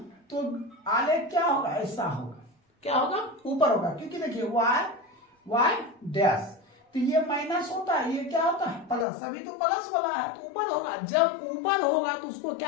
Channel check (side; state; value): right; drops out; at 9.1 s